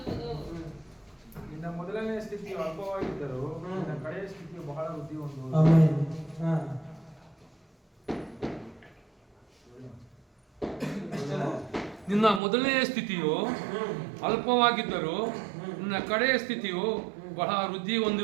ನಿನ್ನ ಮೊದಲನೆಯ ಸ್ಥಿತಿಯು ಅಲ್ಪವಾಗಿದ್ದರೂ ನಿನ್ನ ಕಡೆಯ ಸ್ಥಿತಿಯು ಬಹಳ ವೃದ್ಧಿ ಹೊಂದುವುದು. ಆಮೆನ್. ನಿನ್ನ ಮೊದಲನೆಯ ಸ್ಥಿತಿಯು ಅಲ್ಪವಾಗಿದ್ದರೂ ನಿನ್ನ ಕಡೆಯ ಸ್ಥಿತಿಯು ಬಹಳ ವೃದ್ಧಿ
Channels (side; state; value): left; drops out; at 12.4 s